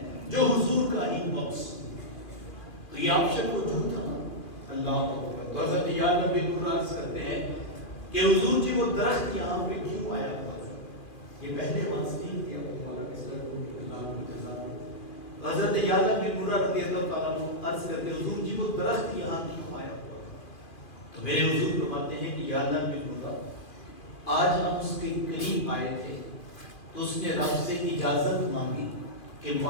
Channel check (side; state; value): right; late; 2.4 ms